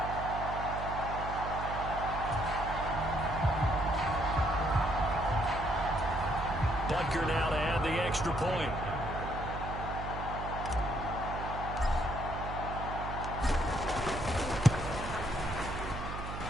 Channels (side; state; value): right; noise; hum, 7 dB below the sound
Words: Butker now to add the extra point.